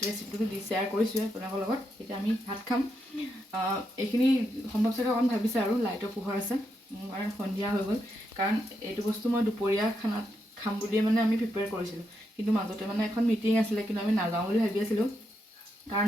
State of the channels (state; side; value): normal; both; correlation 0.82